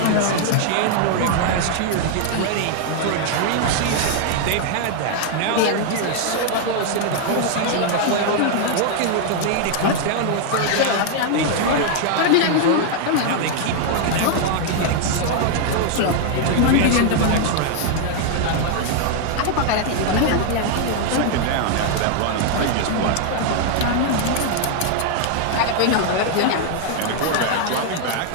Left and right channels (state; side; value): different; both; correlation 0.00